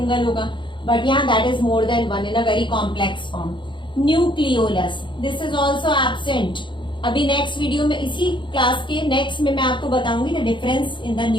होगा, बट यहाँ that is more than one in a very complex form. Nucleolus, this is also absent. अभी नेक्स्ट वीडियो में, इसी क्लास के नेक्स्ट में मैं आपको बताऊंगी the difference in the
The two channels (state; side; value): late; right; 0.23 ms